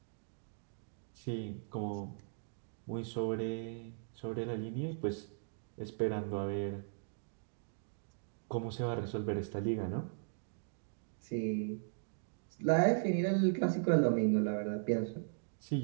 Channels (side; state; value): left; silent; digital silence